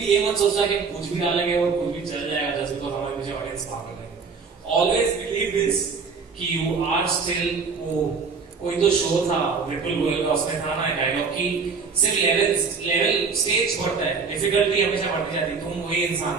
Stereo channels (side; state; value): left; quieter; 5.1 dB